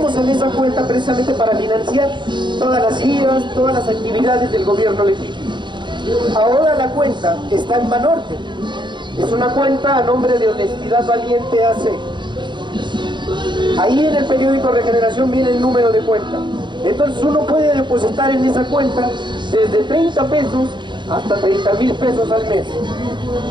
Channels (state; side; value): late; left; 0.22 ms